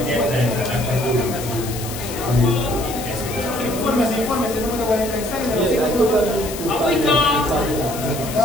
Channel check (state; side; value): noise; left; hiss, 10 dB below the sound